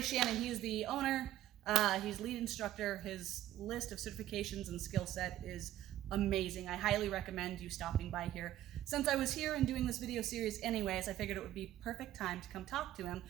he's the owner, he's lead instructor. His list of certifications and skill set is amazing. I highly recommend you stopping by here. Since I was here and doing this video series anyways, I figured it would be perfect time to come talk to him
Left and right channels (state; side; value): quieter; left; 13.2 dB